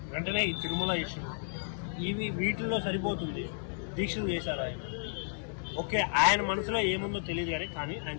వెంటనే ఈ తిరుమల ఇష్యూ వీటిల్లో సరిపోతుంది. దీక్షలు చేశారు ఆయన. ఓకే, ఆయన మనసులో ఏముందో తెలియదు కానీ ఆయన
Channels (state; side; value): silent; right; digital silence